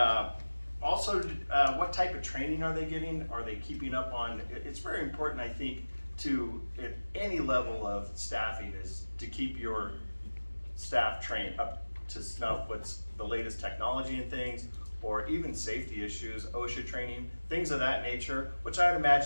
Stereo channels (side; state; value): both; inverted; correlation -1.00